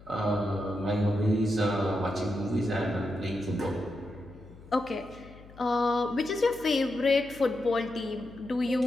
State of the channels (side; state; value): left; noise; hum, 20 dB below the sound